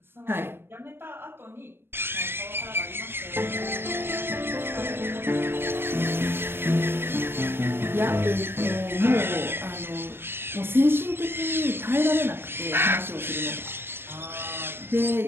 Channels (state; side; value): late; left; 0.11 ms